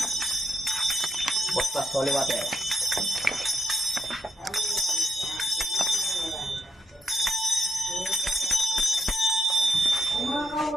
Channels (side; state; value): both; normal; correlation 0.85